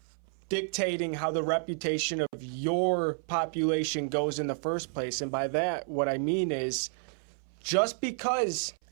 dictating how the reputation of your population goes in the first place. And by that, what I mean is just because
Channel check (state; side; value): silent; left; 57 dB below the other